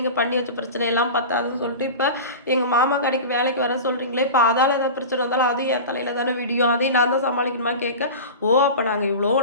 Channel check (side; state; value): both; inverted; correlation -0.30